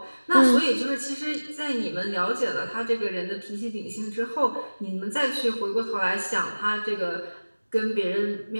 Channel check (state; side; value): inverted; both; correlation -1.00